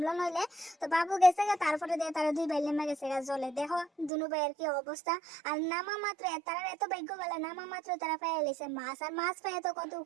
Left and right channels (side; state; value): left; drops out; at 4.1 s